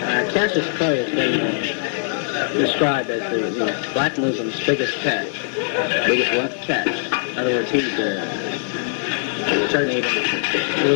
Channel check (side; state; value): right; silent; digital silence